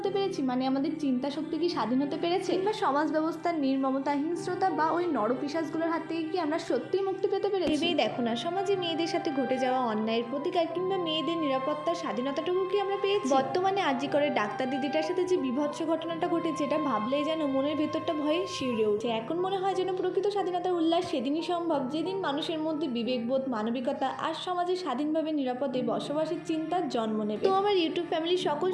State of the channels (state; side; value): identical; both; correlation 1.00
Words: পেরেছি? মানে আমাদের চিন্তা শক্তি কি স্বাধীন হতে পেরেছে? কিংবা সমাজ ব্যবস্থার নির্মমতা, হিংস্রতা বা ওই নরপিশাচগুলোর হাত থেকে কি আমরা সত্যিই মুক্তি পেতে পেরেছি? ভেবেই দেখো না, সমাজে মেয়েদের সাথে ঘটে যাওয়া অন্যায়ের প্রতিকার কিংবা মেয়েদের নিরাপত্তার স্বাধীনতাটুকু কি আমরা পেয়েছি? বর্তমানে আরজি করে ডাক্তার দিদিটার সাথে যে বিভৎস ঘটনাটা ঘটেছে, এটা ভাবলেই যেন মনের ভেতরটা ভয়ে শিউরে ওঠে। এখন মনে হয় যেন প্রকৃত স্বাধীনতার উল্লাস সেদিনই সম্ভব যেদিন মানুষের মধ্যে বিবেকবোধ, মানবিকতা আর সমাজে স্বাধীনভাবে নিরাপদে বসবাসের চিন্তার জন্ম নেবে। তো আমার ইউটিউব ফ্যামিলির সকল